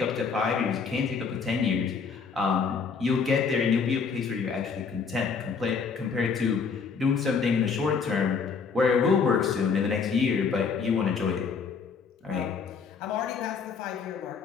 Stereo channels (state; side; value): quieter; right; 5.6 dB